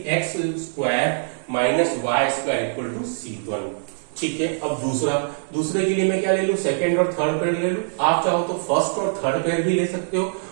x square minus y square equal to c1, ठीक है। अब दूसरे के लिए मैं क्या ले लूं, सेकेंड और थर्ड पेयर ले लूं। आप चाहो तो फर्स्ट और थर्ड पेयर भी ले सकते हो,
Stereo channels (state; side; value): silent; left; 62 dB below the other